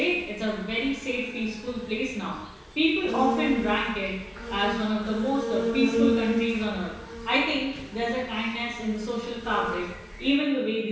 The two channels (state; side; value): identical; both; correlation 1.00